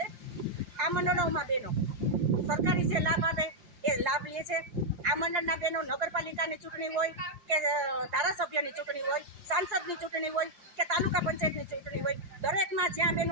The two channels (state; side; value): late; left; 5.7 ms